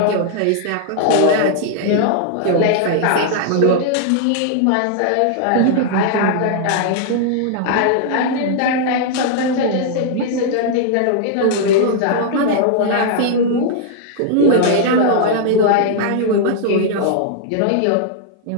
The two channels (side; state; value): both; different; correlation -0.01